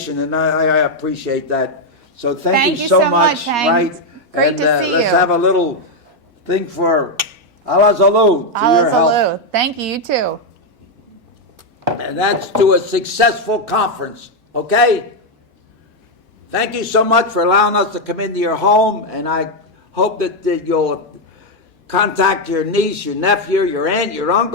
and I appreciate that. So Thank you so much, Hank. right? Great and, to see let's you. have a little thing for Allah Zalou to your health. Hello. Thank you, you too. And that's to a successful conference, okay? Thank you so much for allowing us to come into your home, and I hope that you'll contact your niece, your nephew, your aunt, your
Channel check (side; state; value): both; normal; correlation 0.02